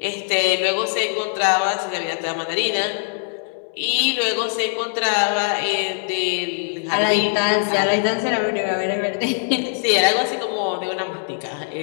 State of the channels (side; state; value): right; silent; digital silence